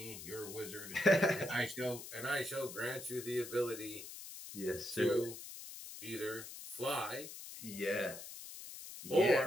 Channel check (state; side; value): noise; left; hiss, 11 dB below the sound